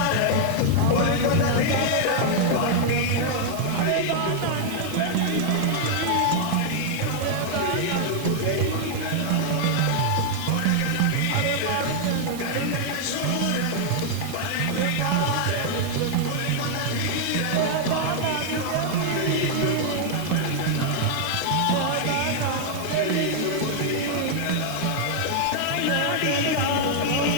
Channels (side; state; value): both; different; correlation 0.00